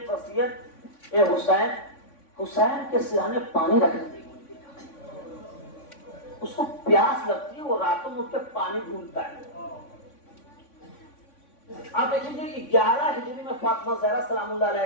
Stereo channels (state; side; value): late; right; 3.5 ms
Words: وصیت اے حسین، حسین کے سرانے پانی رکھنے دیجیے. اس کو پیاس لگتی ہے، وہ راتوں میں اٹھ کے پانی ڈھونڈتا ہے. آپ دیکھیں گے 11 ہجری میں فاطمہ زہرا سلام اللہ